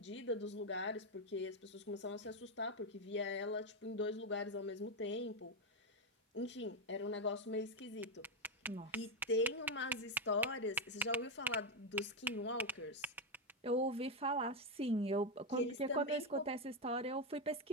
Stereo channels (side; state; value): both; normal; correlation 0.06